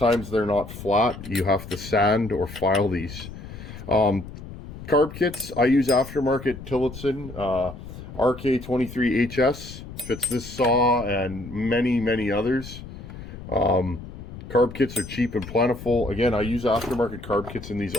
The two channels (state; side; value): noise; left; rumble, 13 dB below the sound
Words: they're not flat. You have to sand or file these. Carb kits, I use aftermarket Tillotson RK23HS. Fits this saw and many others. Carb kits are cheap and plentiful. Again, I use aftermarket carb kits in these